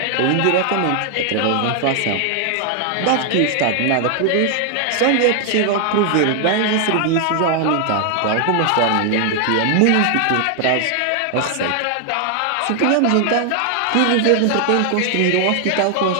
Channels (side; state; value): both; different; correlation 0.00